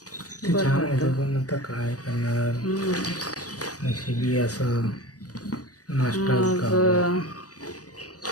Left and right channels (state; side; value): late; right; 0.67 ms